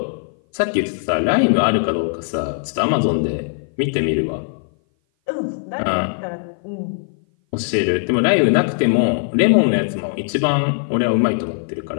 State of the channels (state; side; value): silent; right; 57 dB below the other